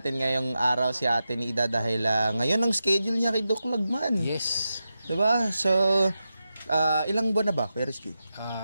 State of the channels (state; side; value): inverted; both; correlation -0.90